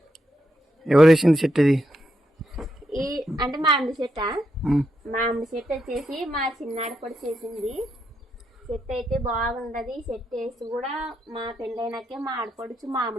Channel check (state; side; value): normal; both; correlation 0.82